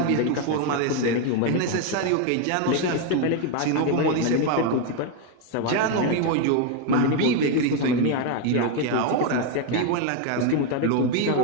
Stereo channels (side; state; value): both; different; correlation 0.01